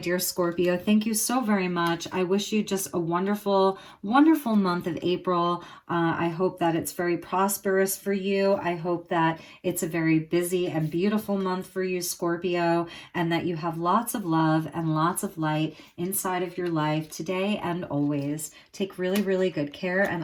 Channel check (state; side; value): identical; both; correlation 1.00